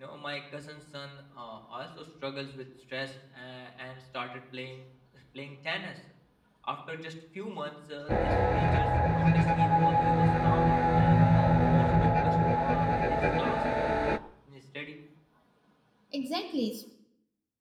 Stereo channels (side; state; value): both; identical; correlation 1.00